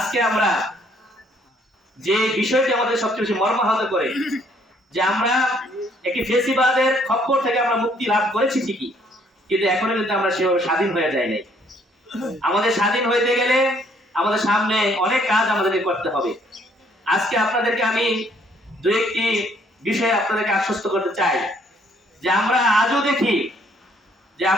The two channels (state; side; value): normal; both; correlation 0.65